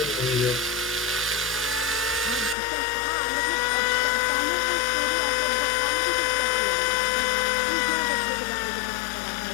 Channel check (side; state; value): right; drops out; at 2.6 s